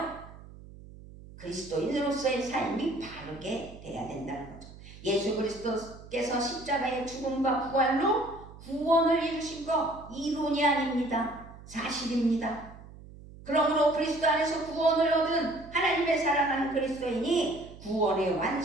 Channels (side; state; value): right; noise; hum, 18 dB below the sound